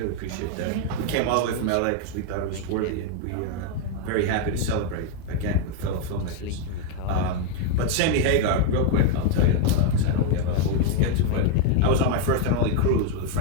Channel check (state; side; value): different; both; correlation 0.01